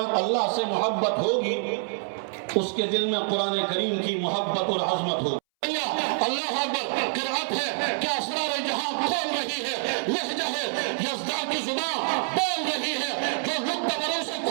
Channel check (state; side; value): silent; left; 61 dB below the other